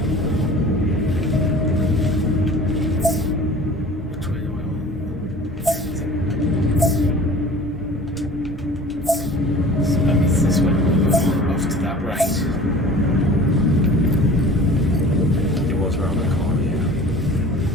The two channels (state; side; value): normal; both; correlation 0.43